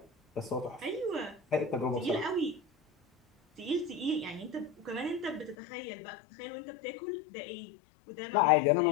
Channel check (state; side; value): drops out; right; at 5.6 s